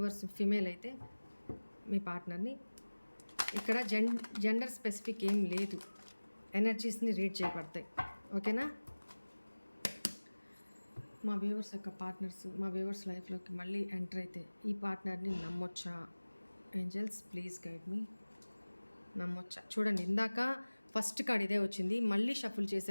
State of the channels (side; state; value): both; inverted; correlation -1.00